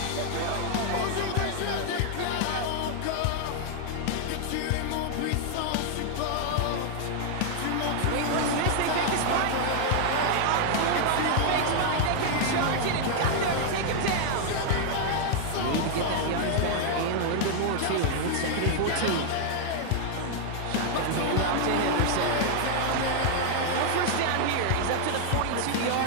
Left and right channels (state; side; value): different; both; correlation 0.00